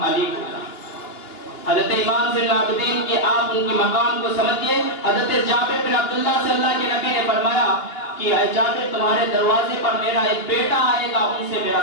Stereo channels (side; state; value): right; late; 2.9 ms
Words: علی ہوگا۔ حضرت امام زین العابدین کی آپ ان کی مقام کو سمجھئے۔ حضرت جابر بن عبداللہ سے اللہ کے نبی نے فرمایا کہ اے جابر تمہارے دروازے پر میرا ایک بیٹا آئے گا، ان سے